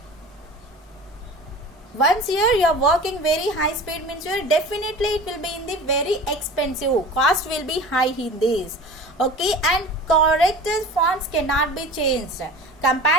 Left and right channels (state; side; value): normal; both; correlation 0.38